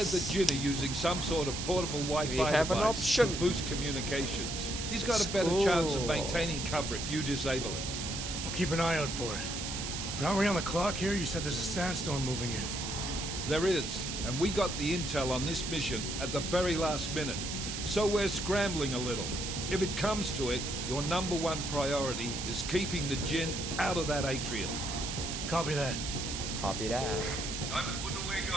said the Jinn are using some sort of portable Wi-Fi We have an device option. to boost communications. He's got a better Cool. chance of maintaining cover if you disable it. I'll keep an eye out for it. But aren't we on the clock here? You said there's a sandstorm moving in. There is, and we got the intel on this mission at the very last minute, so we're scrambling a little. If it comes to it, your #1 priority is keeping the Jinn out of that atrium. Copy that. Copy that. Time to put away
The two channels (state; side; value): noise; right; hiss, 5 dB below the sound